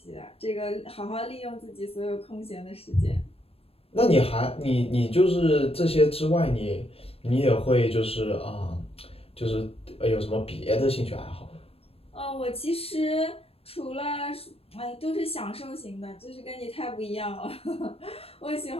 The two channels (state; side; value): late; right; 0.28 ms